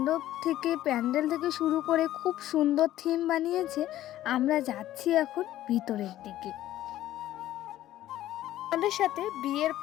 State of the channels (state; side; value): quieter; right; 13.7 dB